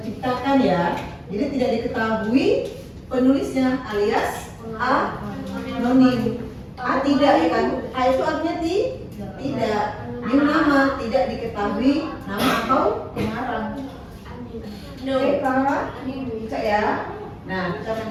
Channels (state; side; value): identical; both; correlation 1.00